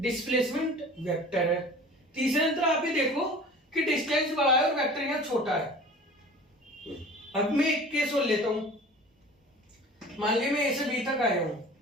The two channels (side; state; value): both; normal; correlation 0.42